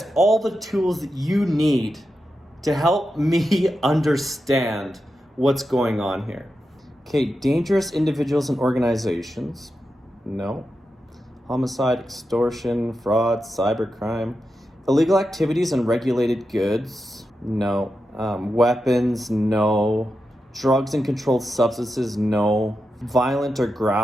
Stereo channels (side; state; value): both; normal; correlation 0.89